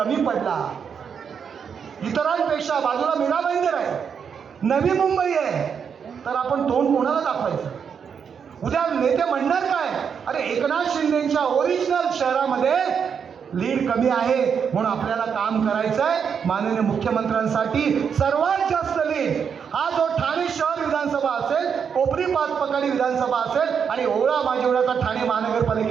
पडला, इतरांपेक्षा बाजूला मीरा भाईंदर आहे, नवी मुंबई आहे, तर आपण तोंड कोणाला दाखवायचं? उद्या नेते म्हणणार काय? अरे एकनाथ शिंदेच्या ओरिजिनल शहरामध्ये लीड कमी आहे म्हणून आपल्याला काम करायचं आहे. माननीय मुख्यमंत्र्यांसाठी सर्वात जास्त लीड हा जो ठाणे शहर विधानसभा असेल, कोपरी पाचपकाडी विधानसभा असेल आणि ओवळा माजिवळाचा ठाणे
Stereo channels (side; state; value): left; quieter; 7.0 dB